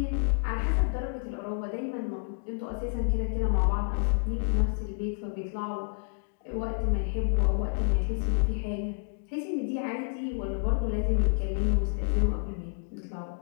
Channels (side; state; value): right; silent; digital silence